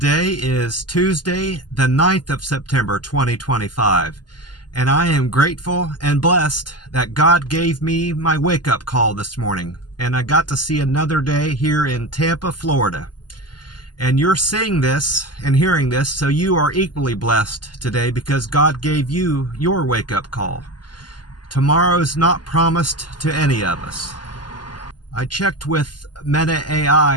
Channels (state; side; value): late; right; 0.70 ms